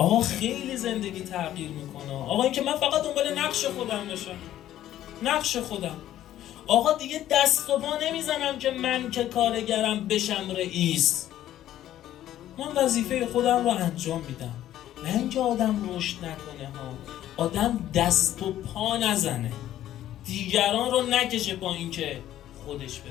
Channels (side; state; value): right; quieter; 12.6 dB